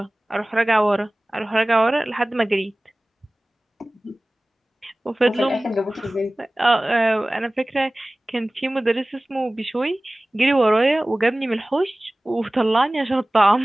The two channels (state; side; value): normal; both; correlation 0.98